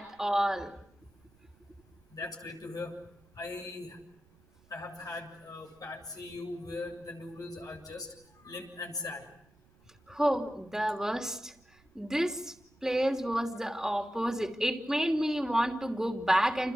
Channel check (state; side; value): noise; right; rumble, 30 dB below the sound